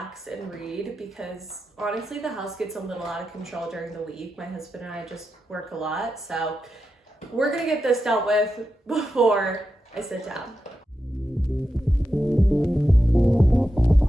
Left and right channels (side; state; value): both; normal; correlation 0.89